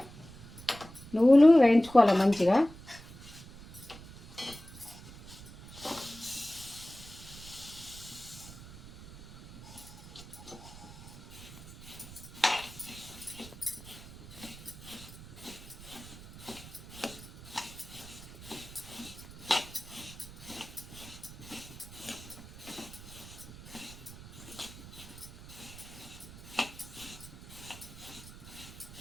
నువ్వులు వేయించుకోవాలి మంచిగా.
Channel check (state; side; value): noise; right; rumble, 16 dB below the sound